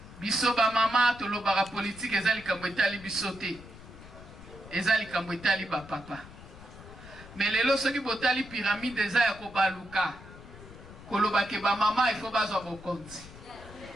Biso ba mama tolobaka politique eza likambo etali biso te. Eza likambo etali ba papa. Mais lelo soki botali pyramide eza ya kobaluka koloba ke ba mama il faut bazwa bokonzi.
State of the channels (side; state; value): left; noise; rumble, 17 dB below the sound